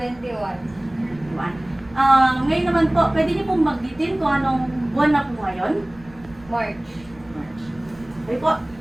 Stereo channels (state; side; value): noise; right; rumble, 24 dB below the sound